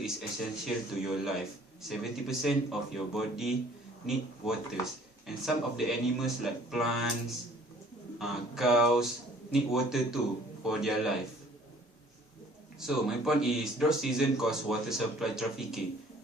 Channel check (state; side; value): normal; both; correlation 0.55